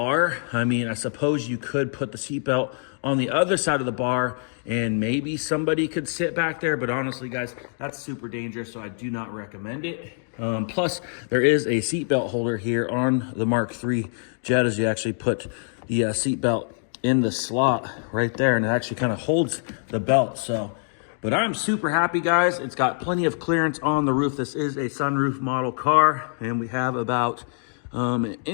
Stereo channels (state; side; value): silent; right; 57 dB below the other